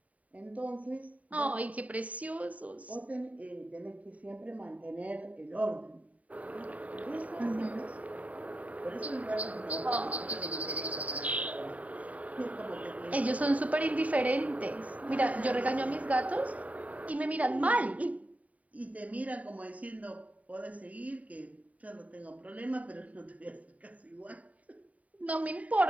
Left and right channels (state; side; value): late; left; 0.070 ms